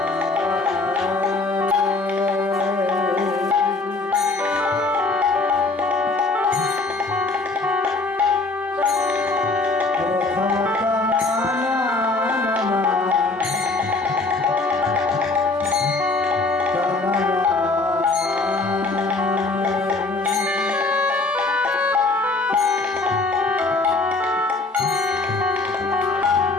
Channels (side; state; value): right; quieter; 3.4 dB